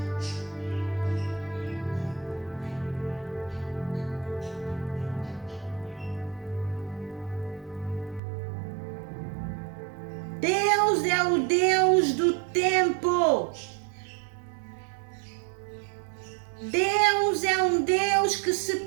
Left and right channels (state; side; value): drops out; left; at 8.2 s